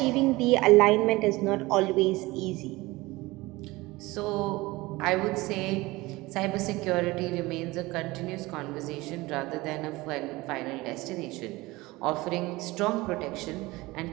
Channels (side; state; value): left; quieter; 20.9 dB